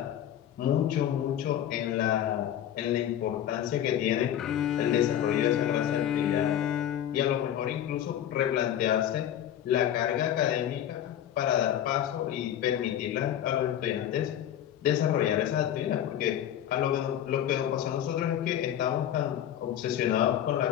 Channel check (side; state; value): right; quieter; 10.7 dB